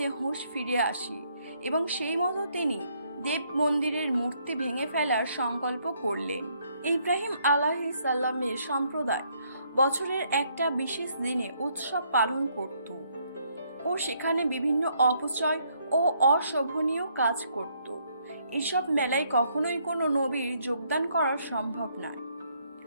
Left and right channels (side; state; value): both; inverted; correlation -0.70